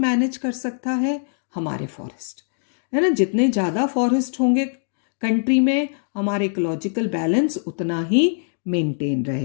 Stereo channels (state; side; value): silent; right; digital silence